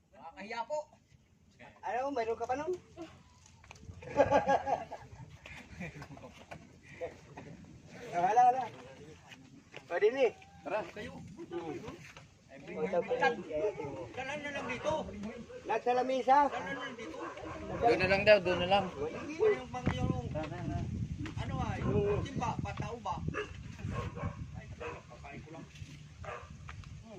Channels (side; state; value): both; identical; correlation 1.00